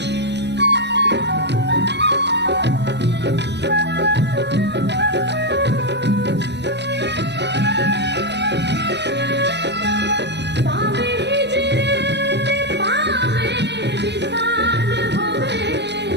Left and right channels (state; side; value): late; left; 0.50 ms